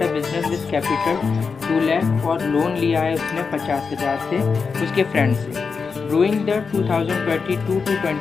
a business with capital 2 lakh और लोन लिया है उसने 50,000 से उसके फ्रेंड से। During the 2022 to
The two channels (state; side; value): quieter; right; 5.2 dB